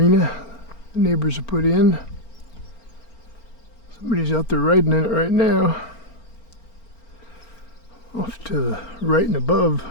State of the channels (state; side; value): late; right; 4.4 ms